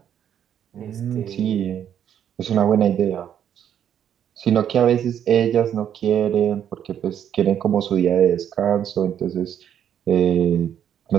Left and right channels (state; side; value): quieter; left; 9.4 dB